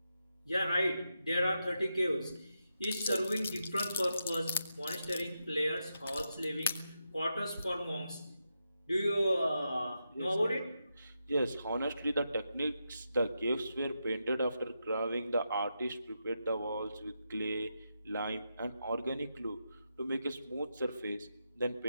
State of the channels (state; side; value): inverted; both; correlation -0.85